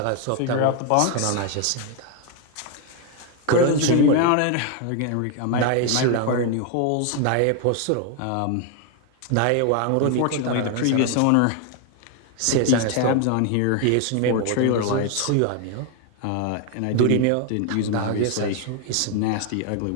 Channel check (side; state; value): both; different; correlation 0.01